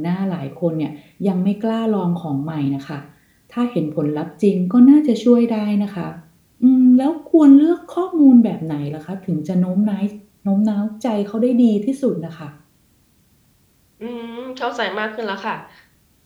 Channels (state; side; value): identical; both; correlation 1.00